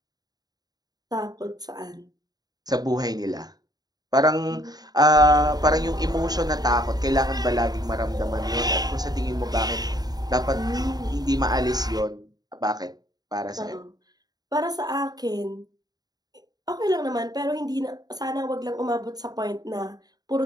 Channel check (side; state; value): left; late; 0.19 ms